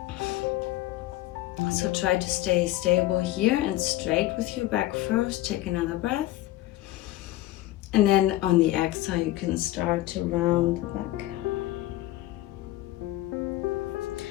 So try to stay stable here and straight with your back first. Take another breath. And then on the exhale, you can start to round the back.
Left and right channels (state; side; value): quieter; right; 16.0 dB